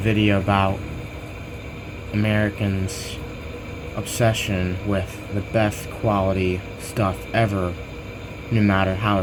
about Americans' obsession with the best quality stuff ever, no matter how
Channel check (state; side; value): identical; both; correlation 1.00